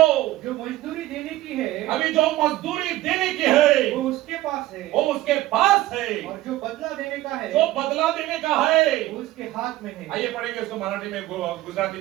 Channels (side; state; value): left; quieter; 16.0 dB